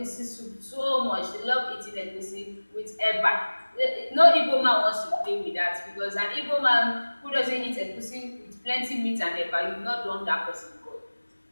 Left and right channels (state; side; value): inverted; both; correlation -1.00